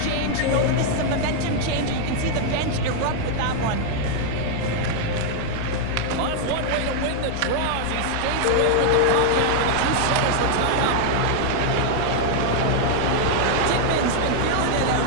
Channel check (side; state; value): both; different; correlation 0.00